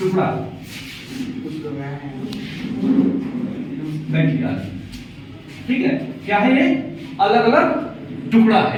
ठीक है, क्या है ये? अलग अलग टुकड़ा है।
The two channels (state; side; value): identical; both; correlation 1.00